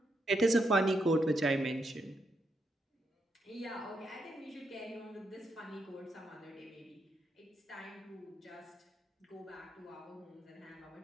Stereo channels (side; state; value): both; normal; correlation 0.80